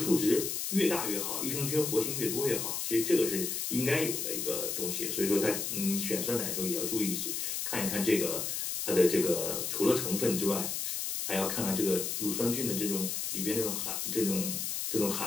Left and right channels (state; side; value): noise; left; hiss, 2 dB below the sound